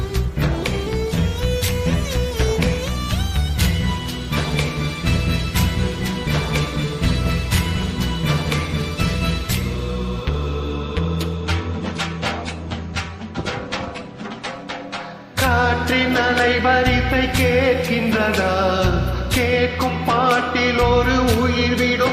காற்றின் அலைவரிசை கேட்கின்றதா? கேட்கும் பாட்டில் ஒரு உயிர்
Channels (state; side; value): identical; both; correlation 1.00